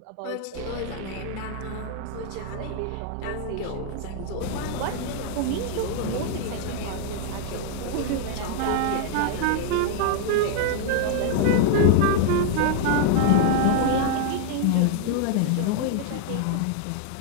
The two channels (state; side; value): different; both; correlation 0.00